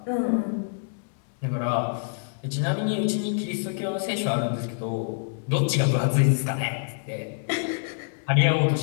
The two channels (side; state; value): right; silent; 61 dB below the other